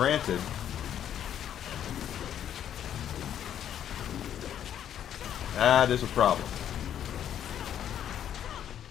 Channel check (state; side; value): quieter; right; 10.0 dB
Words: that is a problem.